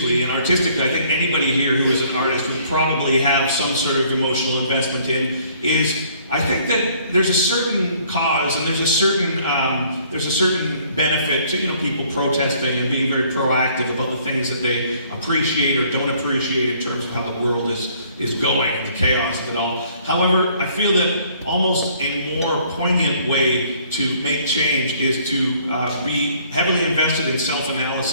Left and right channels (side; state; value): both; inverted; correlation -0.60